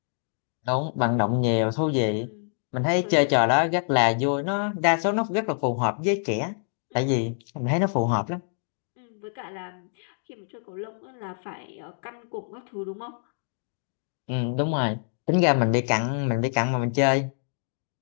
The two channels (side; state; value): right; silent; digital silence